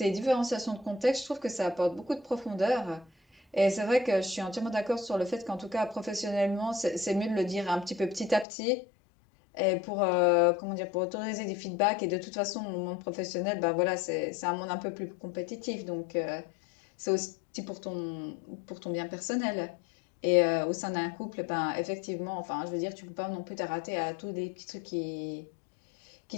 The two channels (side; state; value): right; drops out; at 8.5 s